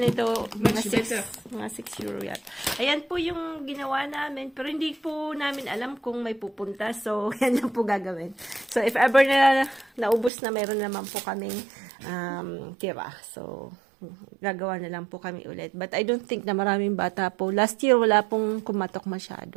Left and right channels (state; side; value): drops out; left; at 10.3 s